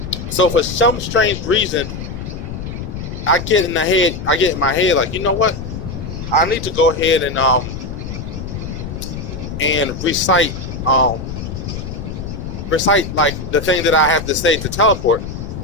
So for some strange reason, I get in my head like, you know what? I need to go ahead and recite like the thing that I have to say to teleport.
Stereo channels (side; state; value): left; noise; rumble, 7 dB below the sound